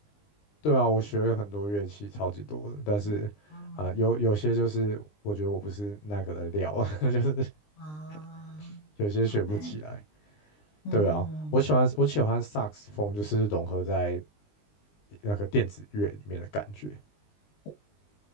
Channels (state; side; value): late; right; 20 ms